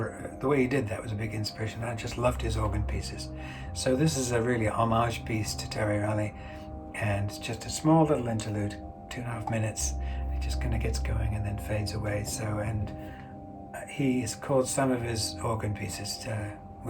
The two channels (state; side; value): identical; both; correlation 1.00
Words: the way he did that was a big inspiration. I just loved his organ pieces. So this is a really homage piece to Terry Riley, and it's just a small little interlude, 2.5 minutes. It just kind of gets going and then fades away. So, and he has called some of his organ pieces